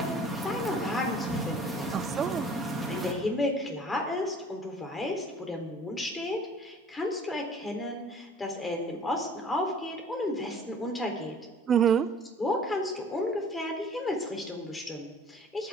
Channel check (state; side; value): normal; both; correlation 0.50